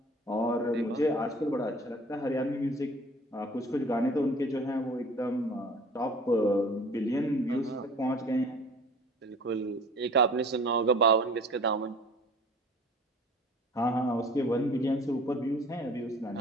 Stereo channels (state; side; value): normal; both; correlation 0.47